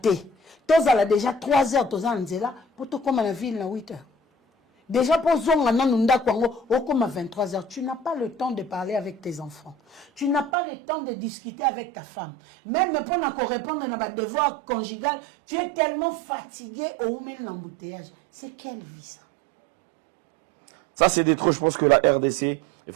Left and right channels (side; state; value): left; drops out; at 10.5 s